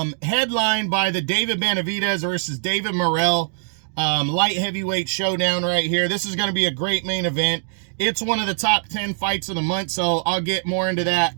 by the David Benavidez versus David Morrell light heavyweight showdown right here. This is going to be a great main event. It's one of the top 10 fights of the month, so I'll get more into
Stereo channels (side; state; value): left; silent; digital silence